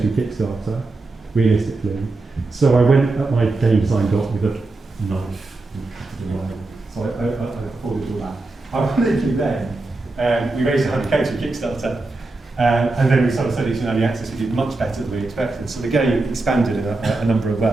through Kickstarter, realistically. So I went at my game design doc with a knife and cut it away. So I afforded all that. Ironically then, we raised 100k through Kickstarter, and then we started studying in early access. We did much better than we expected. So the game expanded in a number of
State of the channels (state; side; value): quieter; left; 3.3 dB